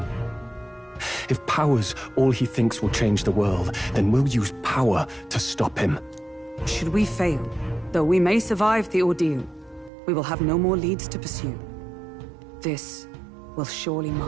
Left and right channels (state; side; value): drops out; left; at 9.9 s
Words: If power's all he thinks will change the world, then we'll use power to stop him. Should we fail, though we may survive the ordeal, we will have no more leads to pursue. This will surely